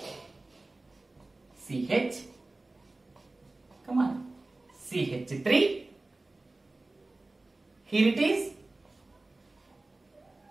CH. Come on. CH3. Here it is.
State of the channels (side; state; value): left; quieter; 3.0 dB